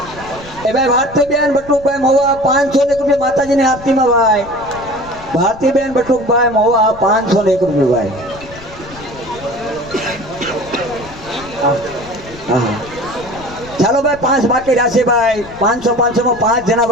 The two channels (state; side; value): noise; left; rumble, 18 dB below the sound